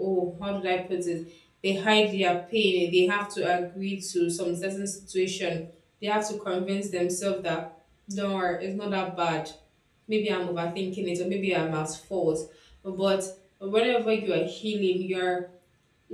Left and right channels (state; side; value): identical; both; correlation 1.00